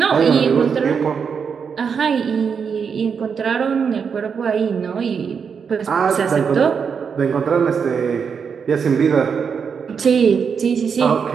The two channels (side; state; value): left; quieter; 6.4 dB